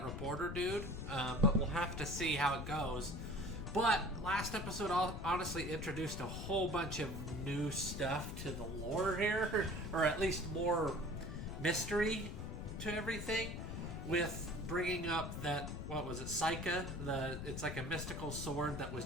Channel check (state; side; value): noise; left; rumble, 6 dB below the sound